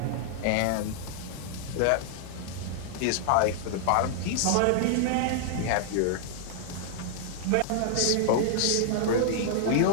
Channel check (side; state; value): both; different; correlation -0.01